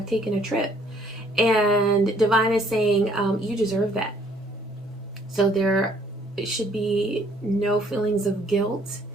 taken a trip. And Divine is saying you deserve that. So there should be no feelings of guilt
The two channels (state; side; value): normal; both; correlation 0.62